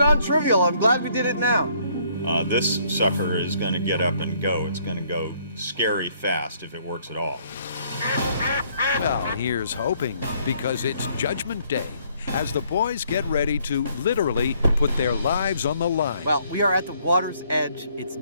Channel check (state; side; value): inverted; both; correlation -0.66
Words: I'm glad we did it now. This sucker is going to get up and go. It's going to go scary fast if it works at all. Well, here's hoping, because it's Judgment Day, as the boys get ready to literally put their lives on the line. Well, we are at the water's edge. It's